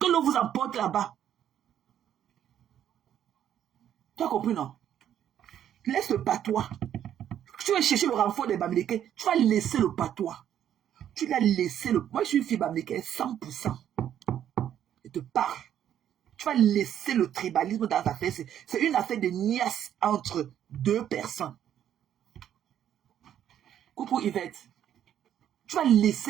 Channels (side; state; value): left; quieter; 10.3 dB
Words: l'on vous emporte là-bas. Tu as compris, non? Laisse le patois. Tu vas chercher le renfort des Bamileke. Tu vas laisser le patois. Tu vas laisser le... Moi, je suis une fille Bamileke, 100%. Je te parle. Tu vas laisser le tribalisme dans ta affaire. C'est une affaire de niasse entre 2 personnes. Coucou Yvette. Tu vas